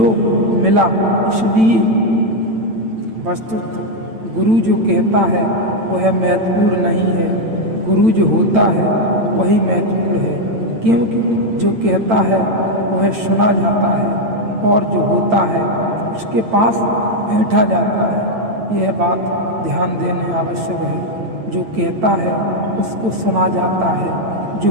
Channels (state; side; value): late; left; 8.9 ms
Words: मिला। इसलिए वस्तुतः गुरु जो कहता है वह महत्वपूर्ण नहीं है, गुरु जो होता है वही महत्वपूर्ण है। क्योंकि जो कहता है वह सुना जाता है और जो होता है उसके पास बैठा जाता है। यह बात ध्यान देने आवश्यक है। जो कहता है उसको सुना जाता है,